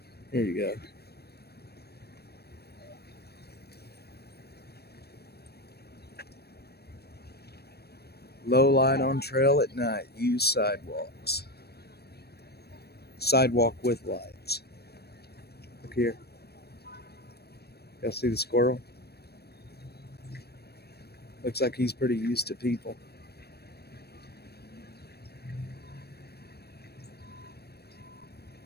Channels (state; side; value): late; right; 0.47 ms